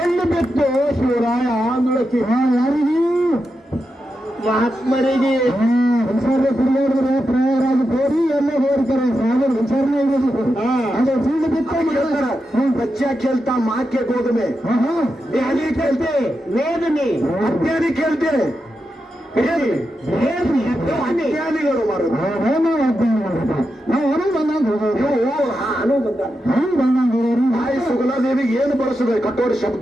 ಬಿತ್ತು ಶಿವರಾಯ ಅಂದಳಕಿ ಯಾರಿಗೆ ಮಹಾತ್ಮರಿಗೆ ಹುಷಾರ ಕುಡಿಯೋದ್ರೆ ಪ್ರಯಾರಾಗಿ ಹೋರಿ ಎಲ್ಲ ಹೋಗ್ತಾರೆ ಸಾಗರ ಹುಷಾರನೇ ಇರೋದು ಅದು ಚೆಂಡು ಬಿತ್ತು ಹೇಳ್ತಾರ ಬಚ್ಚ ಕೇಳ್ತಾ ಮಾಕೆ ಗೋಧುಮೆ ಧ್ಯಾನಿ ಕೇಳ್ತೆ ವೇದನೆ ಅಜ್ಞಾನಿ ಕೇಳ್ತೆ ಅಜ್ಞಾನಿಗಳು ಮಾರು ನಾವು ಹೊರಗೆ ಬಂದಂಗ ತಾಯಿ ಸುಗಲಾದೇವಿಗೆ ಏನು ಬಳಸಿದೆ ಕಟ್ಟೋರಿ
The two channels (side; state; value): both; normal; correlation 0.88